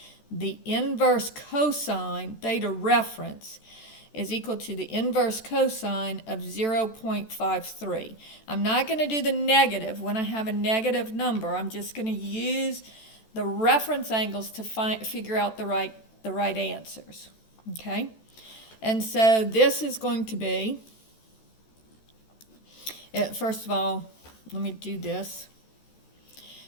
the inverse cosine, theta reference, is equal to the inverse cosine of 0.53. I'm not going to do the negative when I have a negative number. I'm just going to use the reference angles to figure out the right answers. Okay? And so this is going to be, first of all, let me do this.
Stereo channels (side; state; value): right; late; 14 ms